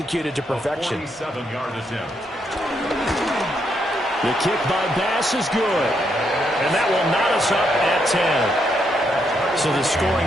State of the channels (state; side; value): normal; both; correlation 0.77